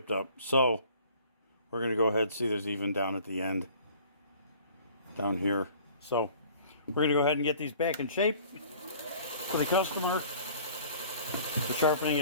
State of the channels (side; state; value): both; inverted; correlation -0.50